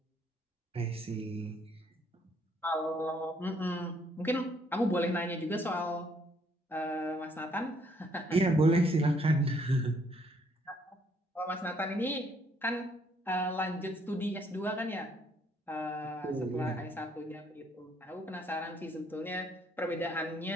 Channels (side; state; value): both; normal; correlation 0.67